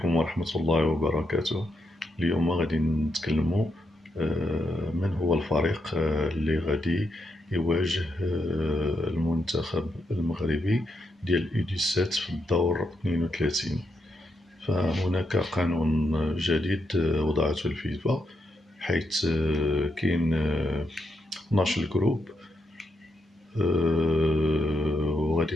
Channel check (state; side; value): normal; both; correlation 0.81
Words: ورحمة الله وبركاته. اليوم غادي نتكلموا من هو الفريق اللي غادي يواجه المنتخب المغربي ديال U17 في الدور 32. فهناك قانون جديد وضعته الفيفا، حيث كاين 12 جروب، وغادي